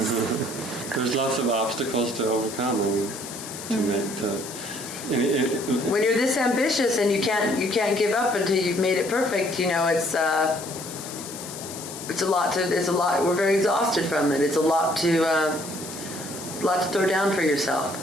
There's lots of obstacles to overcome to make the. When you're this ambitious and you can't give up until you've made it perfect, it's a lot. We're very exhausted from it. It's a lot to throw down for yourself.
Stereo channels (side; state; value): left; noise; hiss, 11 dB below the sound